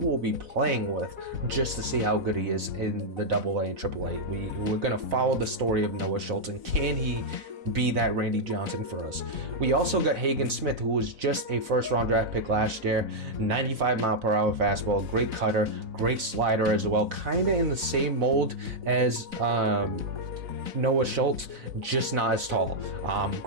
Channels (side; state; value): left; late; 4.0 ms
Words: be playing with just to see how good he is in the AA and AAA. We're gonna follow the story of Noah Schultz, and can he be that Randy Johnson for us? We also got Hagen Smith, who was just a first-round draft pick last year, 95 mile per hour fastball, great cutter, great slider as well, kind of in the same mold as Noah Schultz, just not as tall.